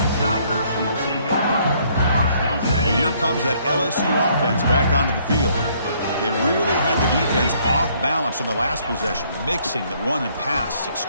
And here comes that LSU offense back onto the field. They really had the defense off balance in the last possession, mixing the run and pass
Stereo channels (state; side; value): inverted; both; correlation -0.65